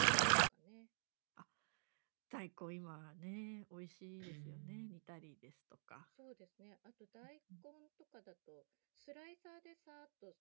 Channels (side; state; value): left; silent; digital silence